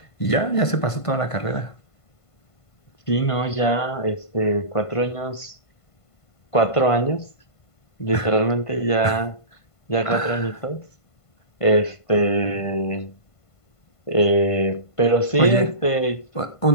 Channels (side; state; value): right; late; 1.5 ms